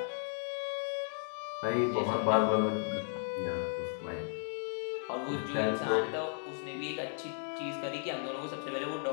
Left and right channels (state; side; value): silent; right; 54 dB below the other